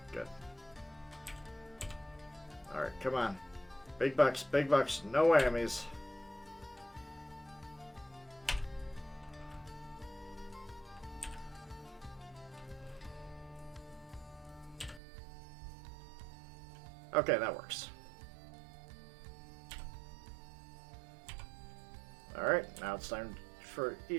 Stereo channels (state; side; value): drops out; left; at 15.0 s